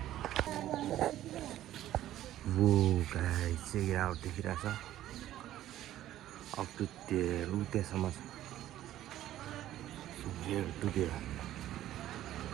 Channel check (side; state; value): left; quieter; 13.2 dB